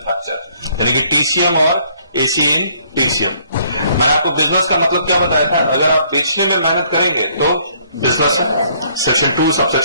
यानी कि TCM और AC इन TCM. मैंने आपको बिजनेस का मतलब क्या बताया था, अगर आप बेचने में मेहनत करेंगे तो बिजनेस है। सेक्शन 2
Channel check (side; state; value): both; inverted; correlation -0.64